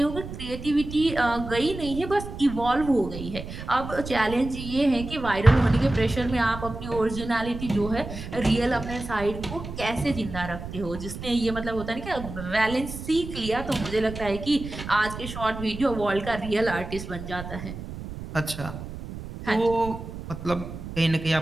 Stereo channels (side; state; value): right; noise; rumble, 10 dB below the sound